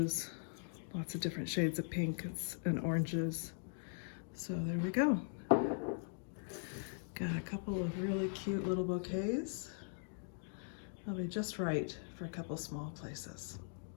lots of different shades of pinks and oranges. So there we go. Got a couple of really cute little bouquets. They'll be just right for a couple small places.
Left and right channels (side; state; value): right; silent; digital silence